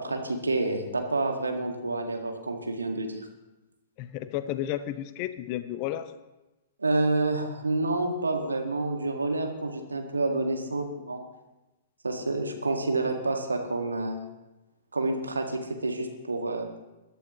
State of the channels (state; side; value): inverted; both; correlation -0.74